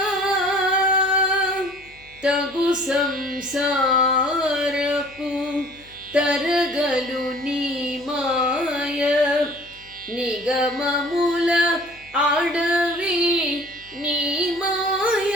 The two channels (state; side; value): noise; left; hum, 27 dB below the sound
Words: తగు సంసారపు తరగలు నీ మాయ, నిగమముల అడవి నీ మాయ.